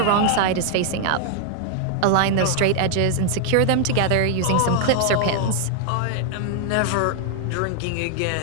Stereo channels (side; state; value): both; different; correlation 0.00